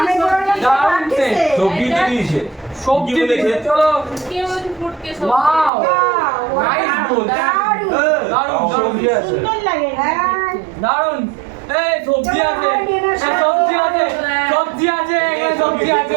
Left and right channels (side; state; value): left; drops out; at 5.7 s